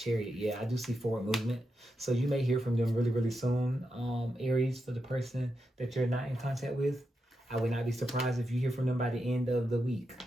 yeah, I do see forward movement. So you may hear from them really, really soon. Aries, for the person that you're not in contact with, I would not be surprised if you hear from them by the end of the week,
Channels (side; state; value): both; normal; correlation 0.86